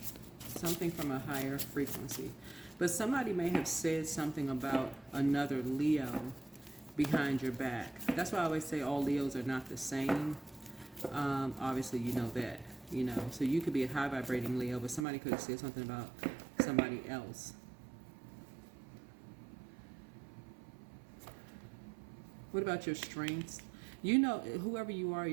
Something from a higher frequency. But somebody may have said something about another Leo behind your back. That's why I always say all Leos are not the same. Obviously, you know that. You know, so you could be a high vibrating Leo, but somebody could have said something about somebody else. What about your strengths? You know, whoever you are,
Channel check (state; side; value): drops out; left; at 15.1 s